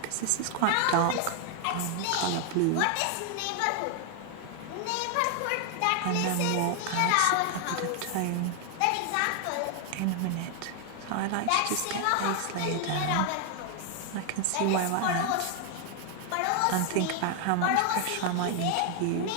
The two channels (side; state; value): both; different; correlation 0.00